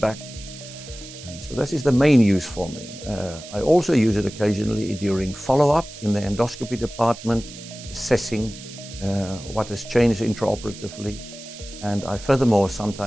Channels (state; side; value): noise; right; hiss, 15 dB below the sound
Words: So that is the main use for me. I also use it occasionally during follow-up in the endoscopy department, assessing what has changed intraoperatively. And I furthermore